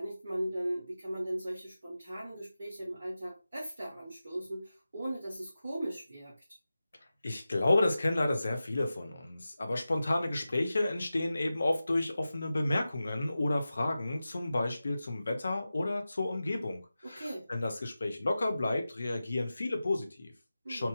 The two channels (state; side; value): inverted; both; correlation -0.94